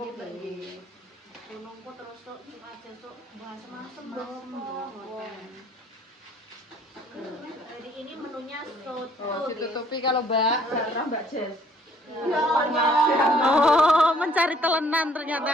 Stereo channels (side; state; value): both; normal; correlation 0.61